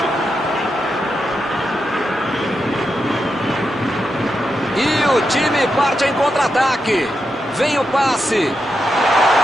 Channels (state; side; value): normal; both; correlation 0.86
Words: E o time parte em contra-ataque. Vem o passe.